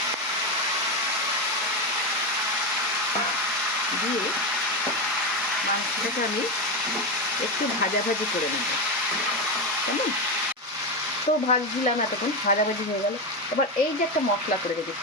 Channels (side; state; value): both; normal; correlation 0.13